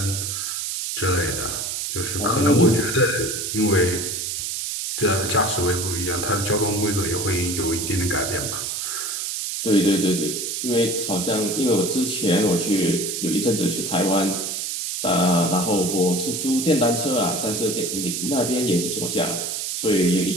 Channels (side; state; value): right; noise; hiss, 3 dB below the sound